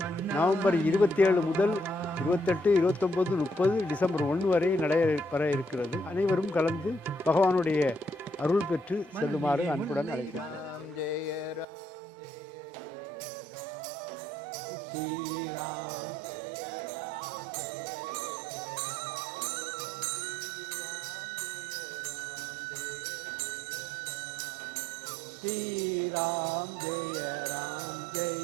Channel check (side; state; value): left; drops out; at 11.7 s